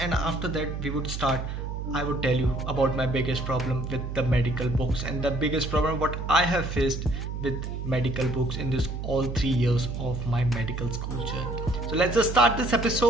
after that we would start. I would tell you about my biggest problem with the medical books and the biggest problem what I have faced with medical books in this all 3 years of my medical school journey. So let's just start this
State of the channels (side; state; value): right; noise; hum, 5 dB below the sound